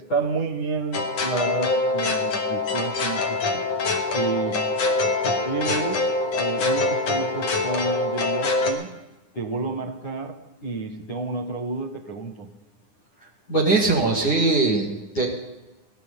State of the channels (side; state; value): right; late; 9.8 ms